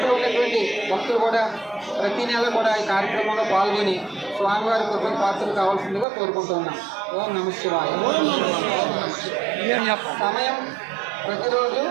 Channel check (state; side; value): drops out; left; at 6.1 s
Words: ఉన్నటువంటి భక్తులు కూడా ప్రతి నెల కూడా ఈ కార్యక్రమంలో పాల్గొని స్వామివారి కృపకు పాత్రలు కావాల్సిందిగా కోరుకుంటున్నాం. ఓం నమః శివాయ. సమయం ప్రతిరోజు